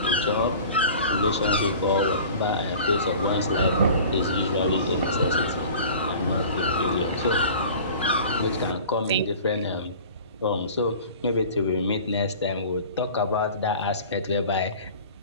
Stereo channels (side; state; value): both; inverted; correlation -0.42